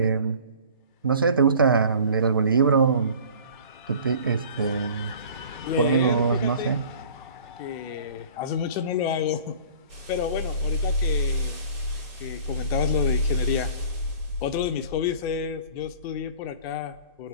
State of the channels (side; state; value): both; inverted; correlation -0.46